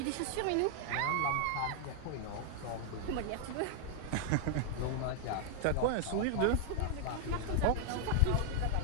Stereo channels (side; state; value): both; different; correlation 0.00